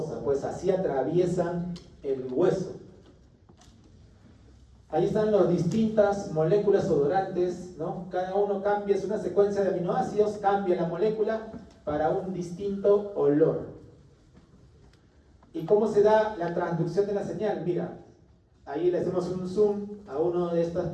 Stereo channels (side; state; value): both; identical; correlation 1.00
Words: pues así atraviesan el hueso. Ahí están las distintas moléculas odorantes, ¿no? Cada uno cambia, es una secuencia de aminoácidos, cambia la molécula para un distinto olor. ¿Y cómo se da la transducción de la señal? Mira, ahí le hacemos un zoom a una de estas